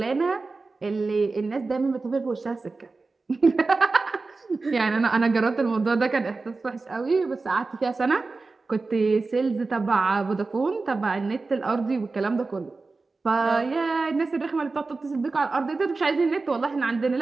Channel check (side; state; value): left; quieter; 3.8 dB